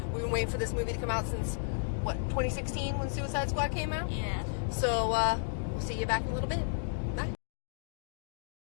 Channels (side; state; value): right; silent; digital silence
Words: We've been waiting for this movie to come out since, 2016 when Suicide Squad came out? Yeah. So we'll see you back in a little bit. Bye.